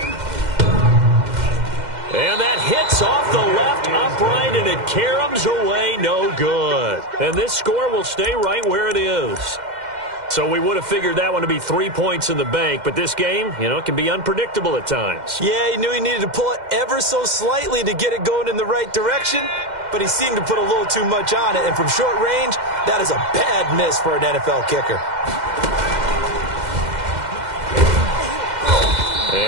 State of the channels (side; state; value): left; late; 2.1 ms